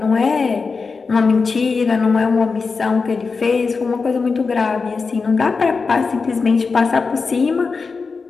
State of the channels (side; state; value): right; quieter; 4.7 dB